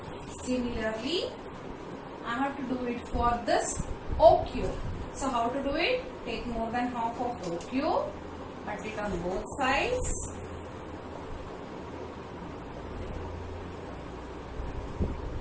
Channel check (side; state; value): both; identical; correlation 1.00